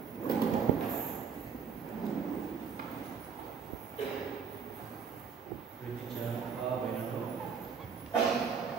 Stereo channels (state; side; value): quieter; left; 6.4 dB